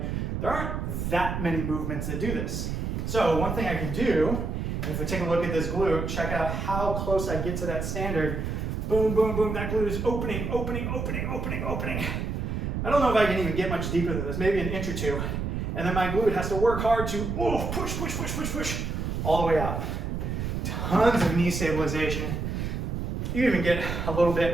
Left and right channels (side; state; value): right; noise; rumble, 2 dB below the sound